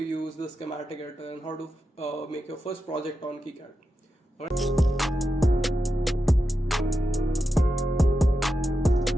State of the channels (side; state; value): both; normal; correlation 0.89